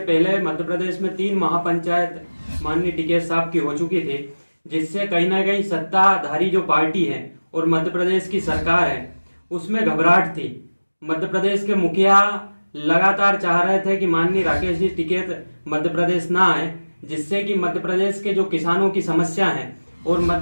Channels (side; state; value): both; inverted; correlation -1.00